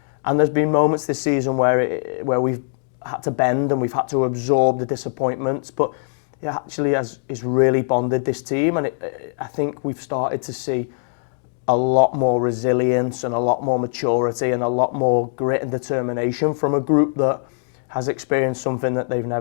And there's been moments this season where we've had to bend and we've had to absorb the disappointments, but it actually has really bonded this team, and I think we've started to see a lot more resilience and a lot more maturity and a lot more grit and determination from a group that has experienced something that they've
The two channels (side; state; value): right; silent; digital silence